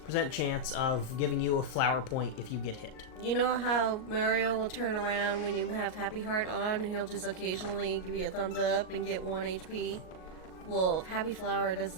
percent chance of giving you a flower point if you get hit. You know how Mario will turn around when you have Happy Heart on and he'll just occasionally give you a thumbs up and get 1 HP? Well, Happy Flower does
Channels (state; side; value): late; right; 38 ms